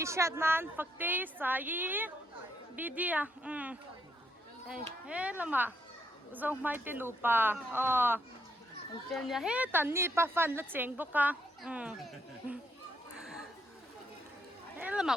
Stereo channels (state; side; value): normal; both; correlation 0.75